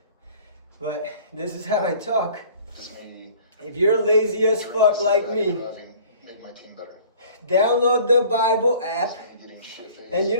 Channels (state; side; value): inverted; both; correlation -0.50